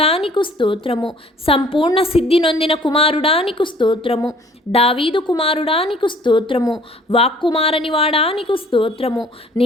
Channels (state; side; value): normal; both; correlation 0.55